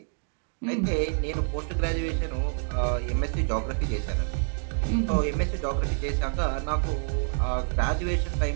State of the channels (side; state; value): left; silent; 60 dB below the other